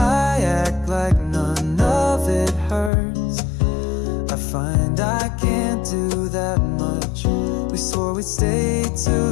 act like none of it hurts. I find I can't do that much. We swore we'd stay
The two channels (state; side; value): drops out; right; at 2.9 s